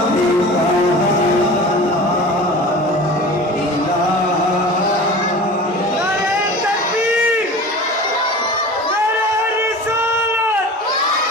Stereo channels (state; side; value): normal; both; correlation 0.37